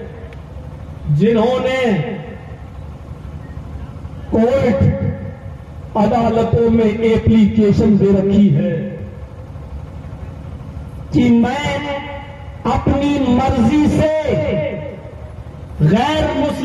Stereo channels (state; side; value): identical; both; correlation 1.00